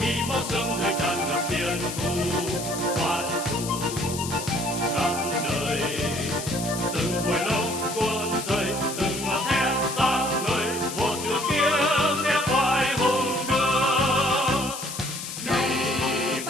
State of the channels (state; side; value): noise; left; hiss, 8 dB below the sound